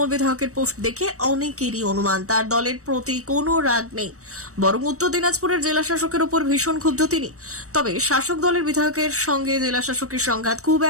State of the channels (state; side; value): late; left; 0.65 ms